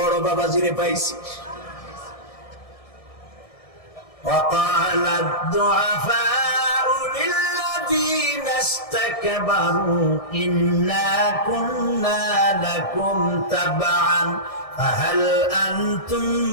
বাবাজিরে পাইছি। وقال الضعفاء للذين استكبروا إنا كنا لكم تبعا فهل أنتم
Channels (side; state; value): right; late; 1.6 ms